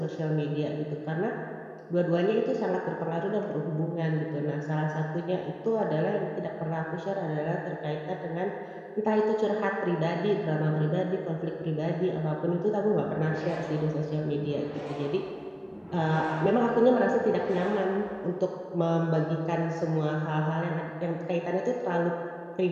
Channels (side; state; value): both; identical; correlation 1.00